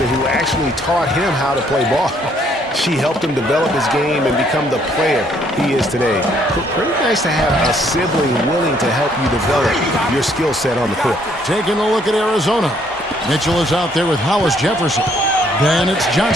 who actually taught him how to play ball. She helped him develop his game and become the player he is today. Pretty nice to have a sibling willing to help you develop your skill set on the court. Taking a look at Arizona. Mitchell is out there with Hollis Jefferson. Then it's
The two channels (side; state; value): both; normal; correlation 0.66